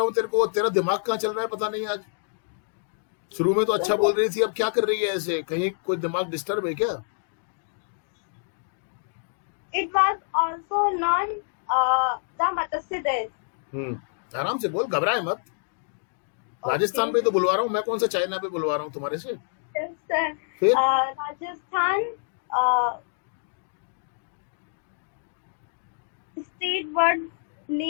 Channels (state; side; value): silent; right; digital silence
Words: हूँ तेरे को, तेरा दिमाग कहाँ चल रहा है पता नहीं आज। शुरू में तो अच्छा बोल रही थी, अब क्या कर रही है ऐसे, कहीं कोई दिमाग डिस्टर्ब है क्या? It was also known the Matsya Desh. आराम से बोल, घबराए मत। राजस्थान पे तो बुलवा रहा हूँ मैं, कौन सा चाइना पे बुलवा रहा हूँ तुम्हारे से। Yes, sir. फिर Rajasthan state word